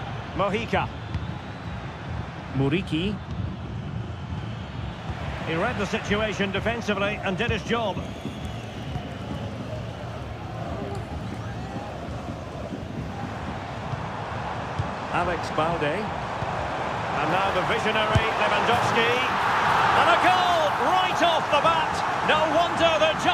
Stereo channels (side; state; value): both; identical; correlation 1.00